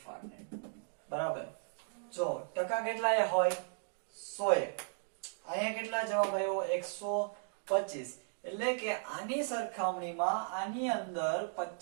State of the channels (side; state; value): left; silent; digital silence